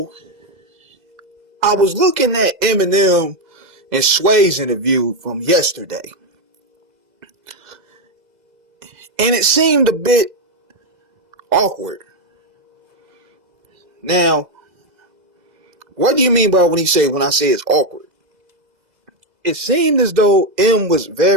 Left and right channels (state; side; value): late; left; 2.0 ms